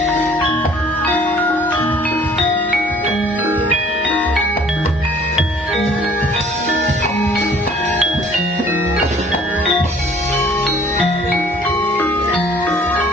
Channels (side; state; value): both; normal; correlation 0.55